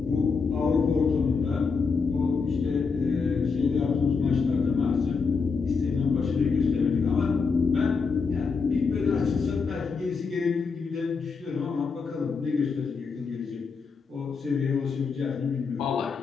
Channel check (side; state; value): right; quieter; 5.1 dB